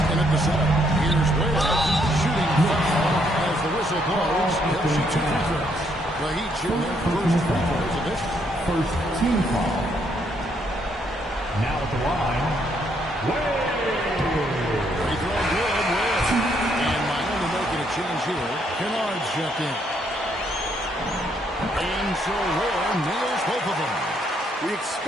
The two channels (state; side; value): normal; both; correlation 0.72